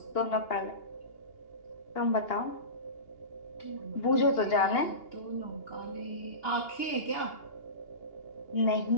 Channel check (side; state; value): right; late; 2.8 ms